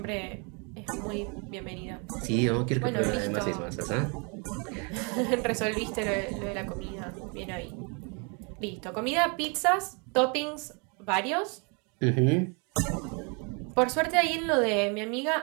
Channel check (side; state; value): left; quieter; 34.3 dB